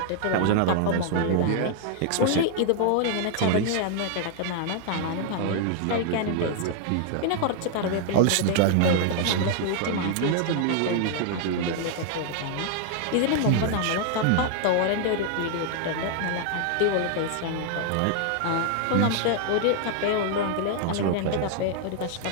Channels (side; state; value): both; different; correlation 0.00